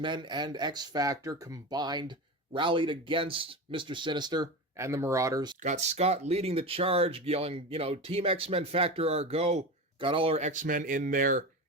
and X-Factor combined, rallied against Mr. Sinister and the Marauders. Got Scott leading the charge, yelling, Team X-Men Factor our go. Got all our X-Men in their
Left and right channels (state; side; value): normal; both; correlation 0.25